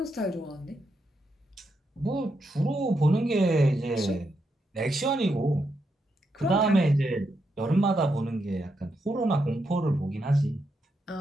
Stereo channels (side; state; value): both; normal; correlation 0.82